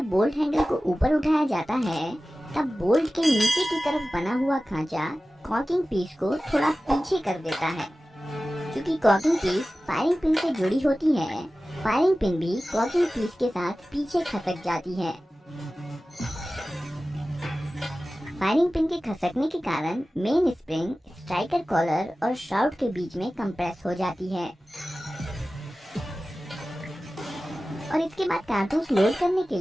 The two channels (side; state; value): both; normal; correlation 0.96